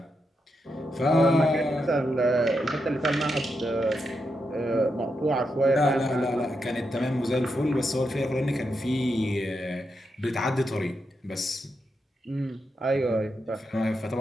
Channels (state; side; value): normal; both; correlation 0.84